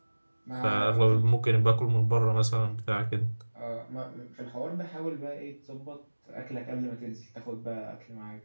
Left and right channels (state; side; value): inverted; both; correlation -1.00